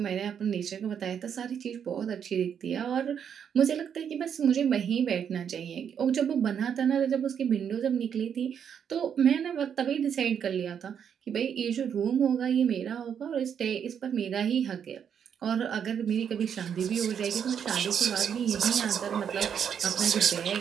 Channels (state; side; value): quieter; left; 8.0 dB